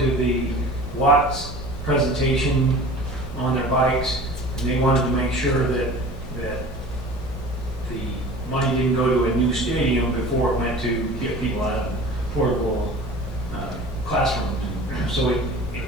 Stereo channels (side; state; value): both; normal; correlation 0.41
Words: the Watts presentation on their bikes, and they wanted to make sure that the money didn't go to a new stadium before it went to get people out of portable classrooms. So